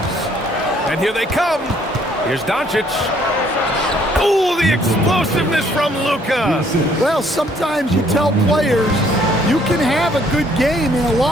And here they come. Here's Doncic. Ooh, the explosiveness from Luka. Well, sometimes you tell players you can have a good game in a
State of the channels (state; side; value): normal; both; correlation 0.64